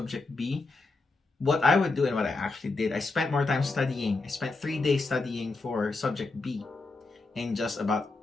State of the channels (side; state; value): right; quieter; 3.6 dB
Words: B, what I would do and what I actually did, I spent more time studying. I spent 3 days studying for subject B and just about